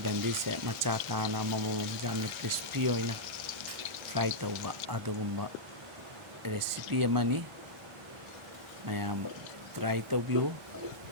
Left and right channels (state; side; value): normal; both; correlation -0.09